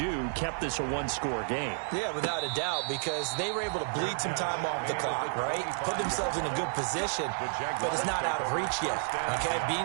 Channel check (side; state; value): left; silent; 57 dB below the other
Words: kept this a 1-score game. Yeah, without a doubt, because they were able to bleed some time off the clock, right? Put themselves in a good position, but it's not out of reach yet, okay?